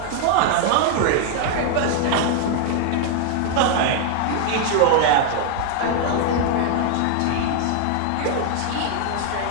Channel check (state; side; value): different; both; correlation 0.00